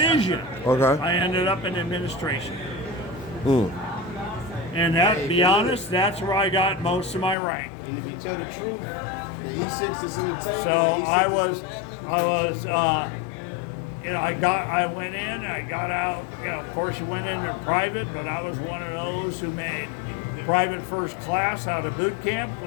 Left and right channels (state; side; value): drops out; right; at 7.4 s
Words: Okay. I ended up in administration. Mm. And that, to be honest, that's where I got most of my rank. And if you tell the truth, the E6 is in the tank. So I went in, I got out. You know, of course, you went into private, but I was one of those who made private first class out of boot camp,